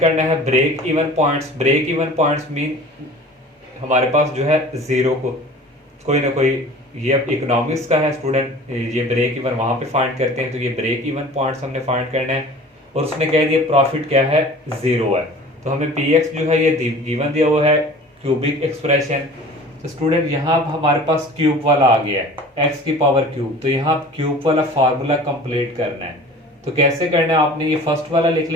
है break even points. Break even points mean हमारे पास जो है जीरो को कोई ना कोई, ये अब इकोनॉमिक्स का है स्टूडेंट, ये ब्रेक इवन वहां पे फाइंड करते हैं, तो ये ब्रेक इवन पॉइंट्स हमने फाइंड करना है। और उसने कह दिया प्रॉफिट क्या है, जीरो है, तो हमें px जो है ये गिवन दिया हुआ है क्यूबिक एक्सप्रेशन। तो स्टूडेंट यहाँ हमारे पास क्यूब वाला आ गया है x की पावर क्यूब, तो यहाँ क्यूब वाला फार्मूला कंप्लीट करना है। तो कैसे करना है, आपने ये फर्स्ट वाला लिख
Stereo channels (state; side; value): normal; both; correlation 0.43